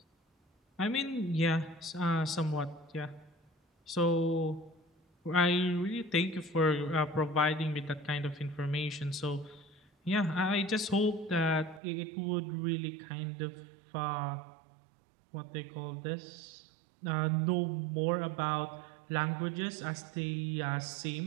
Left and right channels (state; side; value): drops out; left; at 11.8 s